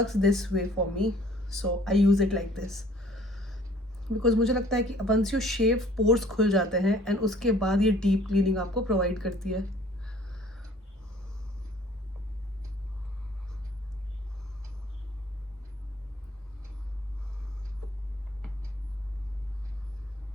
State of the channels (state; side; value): normal; both; correlation 0.55